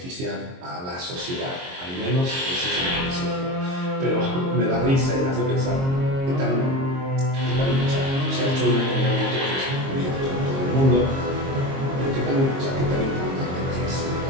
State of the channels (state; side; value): late; left; 22 ms